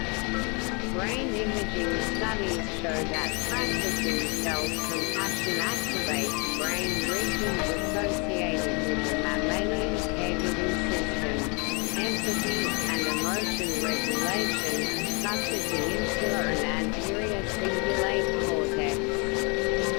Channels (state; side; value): quieter; right; 32.3 dB